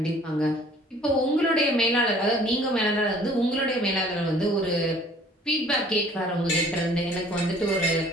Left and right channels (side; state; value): both; normal; correlation 0.53